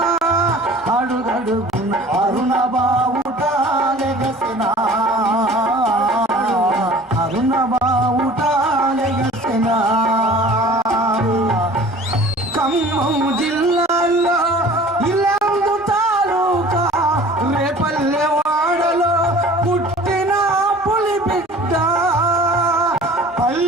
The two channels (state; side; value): normal; both; correlation 0.46